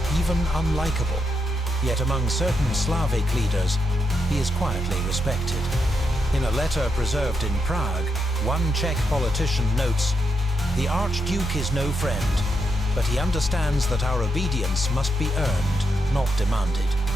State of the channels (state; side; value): normal; both; correlation 0.82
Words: even unlikable. Yet among certain Slavic leaders, he is quietly respected. In a letter preserved in Prague, one Czech politician notes, "The Archduke is no friend, but he understands that our obedience must be earned, not demanded."